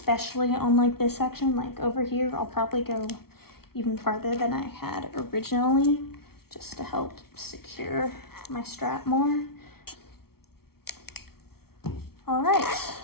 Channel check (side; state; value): right; late; 0.94 ms